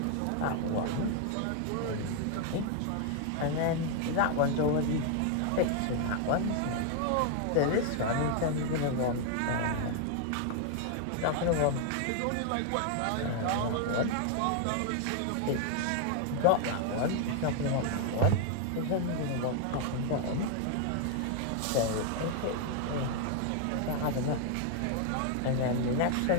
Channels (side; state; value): both; different; correlation 0.00